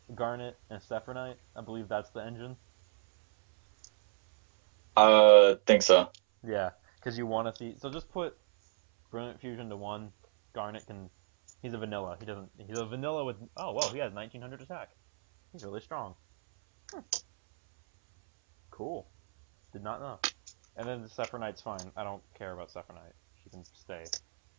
Garnet, and Sephronite. I believe that's the engine. Think so. Yeah, because you want to see. So just put Brilliant Fusion to one. Garnet can. He's a vanilla. He doesn't. He's a vanilla with. Oh well, he has 1900 attack. He's really strong. Cool. Did not know. And then the Sephronite's fine. I don't care about Sephronite. She can stay.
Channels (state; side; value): silent; left; 57 dB below the other